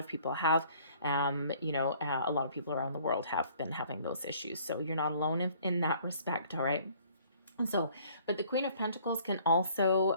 people have, a lot of people around the world have been having those issues. So you're not alone in that respect, all right? So, but the Queen of Pentacles can also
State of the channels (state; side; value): inverted; both; correlation -0.57